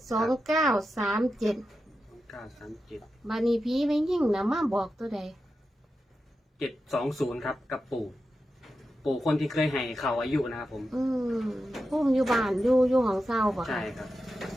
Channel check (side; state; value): both; normal; correlation 0.90